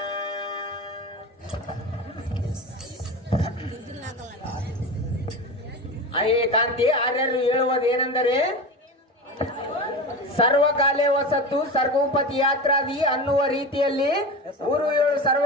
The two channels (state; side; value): normal; both; correlation 0.26